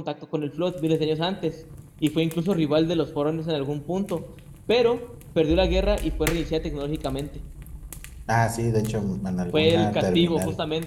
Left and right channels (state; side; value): identical; both; correlation 1.00